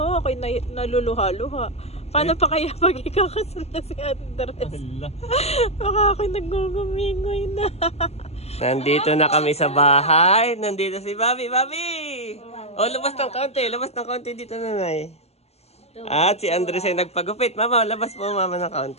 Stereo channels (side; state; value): right; late; 0.30 ms